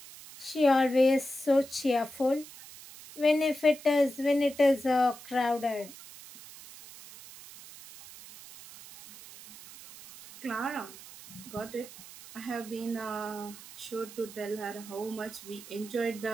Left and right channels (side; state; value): right; noise; hiss, 17 dB below the sound